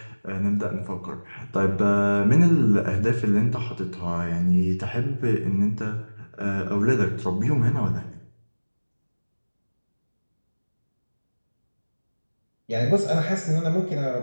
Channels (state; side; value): inverted; both; correlation -1.00